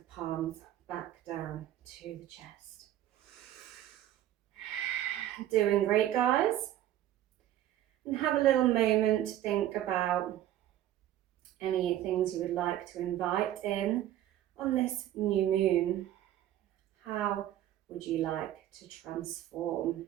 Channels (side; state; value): left; quieter; 12.6 dB